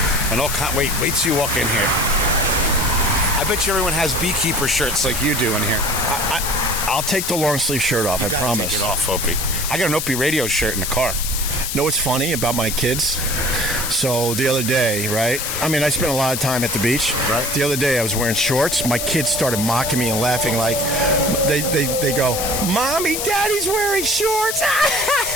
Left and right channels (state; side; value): noise; left; hiss, 3 dB below the sound